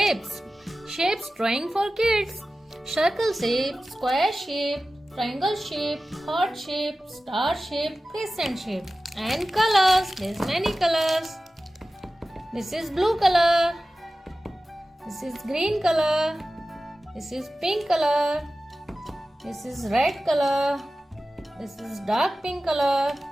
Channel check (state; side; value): normal; both; correlation 0.95